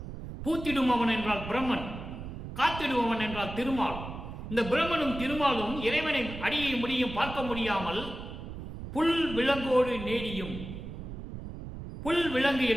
பூத்திடும் அவன் என்றால் பிரம்மன், காத்திடுபவன் என்றால் திருமால். இந்த பிரம்மனும் திருமாலும் இறைவனை அடியை முடியும் பார்க்க முடியாமல் புல் விலங்கோடு நேடியும். புல் விலங்கு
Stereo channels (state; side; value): noise; right; rumble, 9 dB below the sound